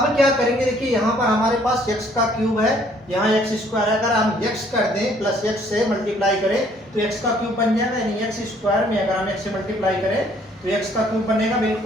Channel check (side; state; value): both; normal; correlation 0.62